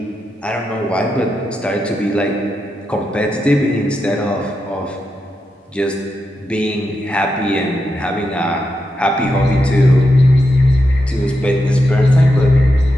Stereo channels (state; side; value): normal; both; correlation 0.86